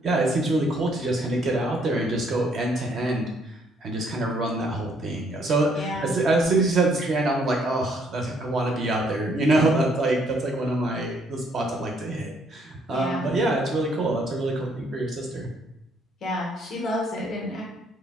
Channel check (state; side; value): normal; both; correlation 0.67